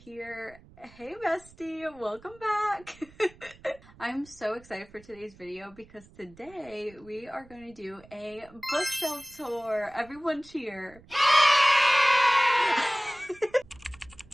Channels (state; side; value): noise; right; rumble, 24 dB below the sound